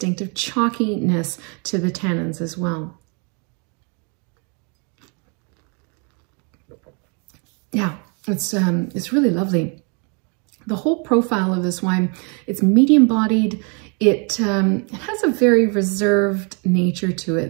chalkiness to the tannins as well. Yeah, It's really lovely. The whole profile of this wine, it's medium bodied. It has a very reserved nature to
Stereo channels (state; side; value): quieter; left; 35.8 dB